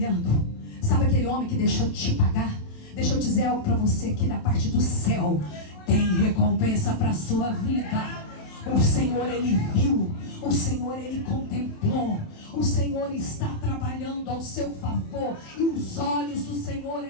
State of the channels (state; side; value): late; right; 27 ms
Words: Sabe aquele homem que deixou de te pagar? Deixa eu dizer algo para você aqui da parte do céu. Tem recompensa para a sua vida. O Senhor ele viu, o Senhor ele contemplou, o Senhor está trabalhando ao seu favor, e os olhos do Senhor